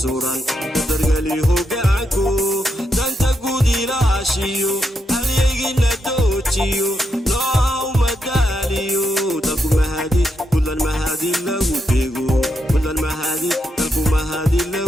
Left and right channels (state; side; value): normal; both; correlation 0.82